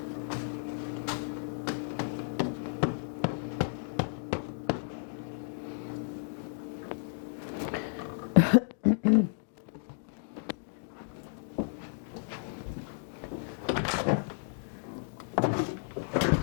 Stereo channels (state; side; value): silent; right; digital silence